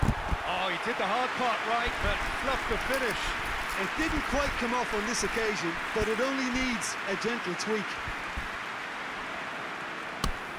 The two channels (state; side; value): identical; both; correlation 1.00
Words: Oh, he did the hard part right, but fluffed the finish. It didn't quite come off on this occasion, but it only needs a gentle tweak.